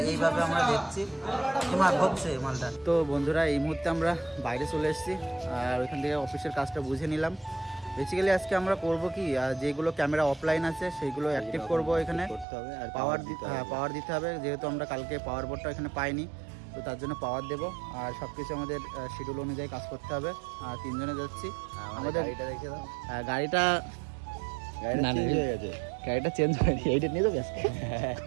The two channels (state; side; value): drops out; left; at 12.5 s